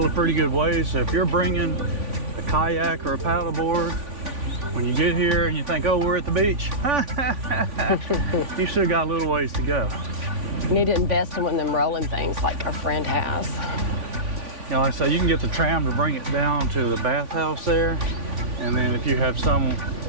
a pretty good way. So if you're bringing a kayak or a paddleboard, when you get here and you think, oh, we're at the beach, you still got a little ways to go. We need to invest in one of them rolling things like our friend has. You know, like I say, you can get the tram to bring it down to the bathhouse there. And then if you have some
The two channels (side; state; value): left; late; 3.5 ms